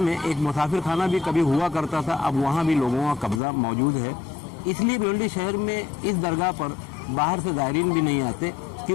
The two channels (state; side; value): drops out; right; at 3.4 s